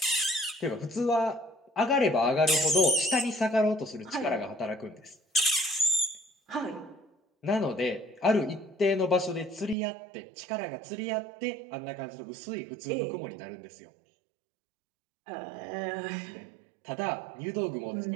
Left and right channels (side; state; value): left; drops out; at 9.8 s